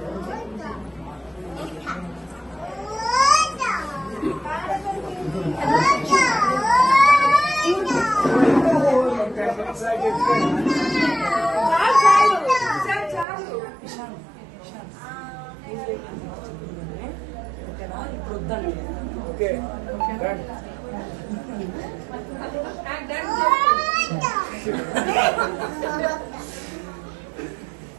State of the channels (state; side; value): drops out; left; at 13.2 s